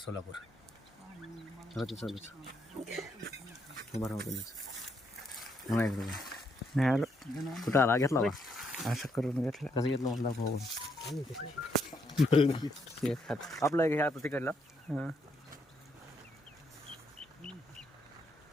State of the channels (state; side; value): normal; both; correlation 0.76